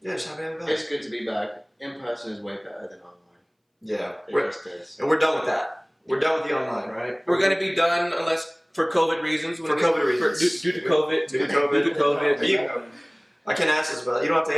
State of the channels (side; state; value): both; identical; correlation 1.00